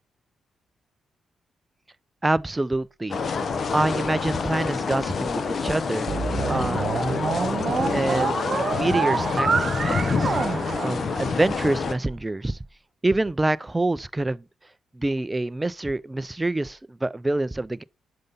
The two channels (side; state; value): both; normal; correlation 0.89